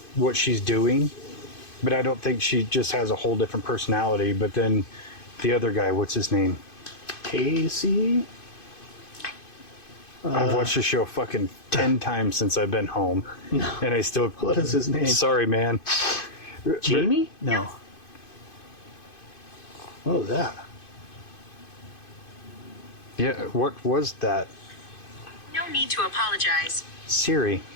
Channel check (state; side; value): late; right; 2.5 ms